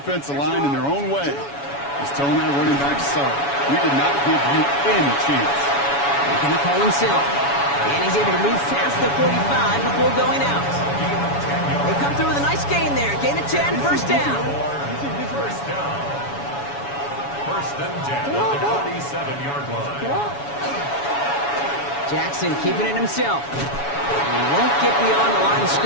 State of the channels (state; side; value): late; right; 7.1 ms